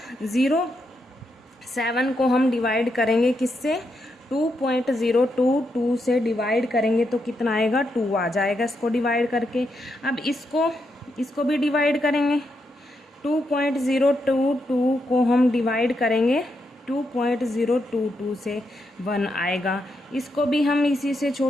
को हम डिवाइड करेंगे किससे, 2.022 से डिवाइड करेंगे तो कितना आएगा, 2 आ जाएगा इसको डिवाइड करके। अब इसको भी डिवाइड करेंगे, 2.022 को हम डिवाइड करेंगे 2.022 से 1 आएगा। इसको भी हम इसी से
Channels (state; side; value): normal; both; correlation 0.82